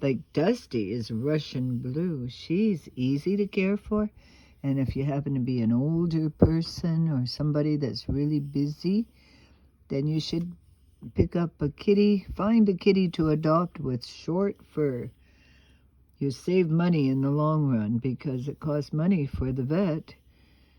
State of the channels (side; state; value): both; identical; correlation 1.00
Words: like Dusty is Russian blue, she's easy to care for. And if you happen to be an older person or somebody that's really busy, then you should pick up find a kitty to adopt with short fur. You save money in the long run because it costs money for the vet